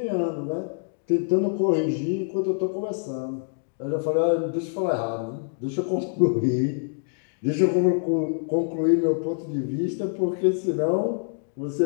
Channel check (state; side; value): silent; right; digital silence